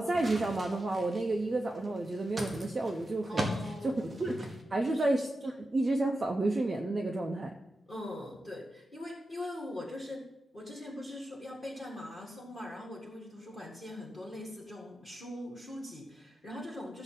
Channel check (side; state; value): both; normal; correlation 0.90